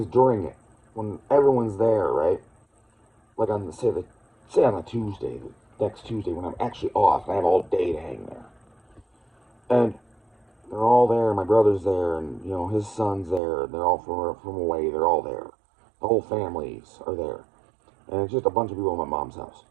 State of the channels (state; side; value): drops out; left; at 13.4 s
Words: during it when everyone's there, right? Like on say on a Tuesday, the next Tuesday when I'm actually off, and I have all day to hang there. And they're all there. My brother's there, and his son's there. They're all from away. They're all there. The whole families are there, and it's just a bunch of people at my mom's house.